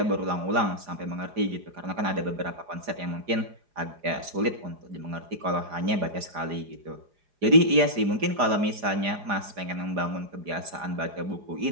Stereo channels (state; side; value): late; left; 4.9 ms